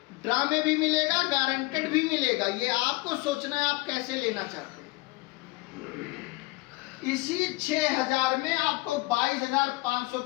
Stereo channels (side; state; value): right; quieter; 23.0 dB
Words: ड्रा में भी मिलेगा, गारंटेड भी मिलेगा। ये आपको सोचना है आप कैसे लेना चाहते हैं। इसी 6000 में आपको 22,500